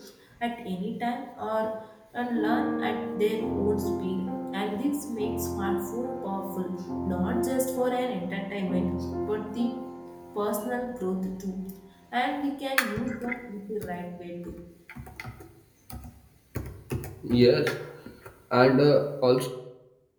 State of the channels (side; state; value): both; identical; correlation 1.00